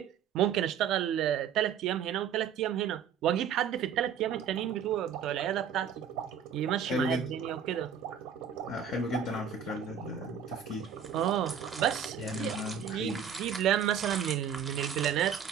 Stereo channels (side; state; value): left; quieter; 7.8 dB